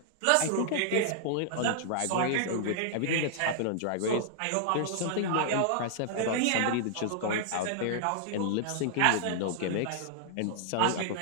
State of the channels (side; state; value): both; different; correlation -0.01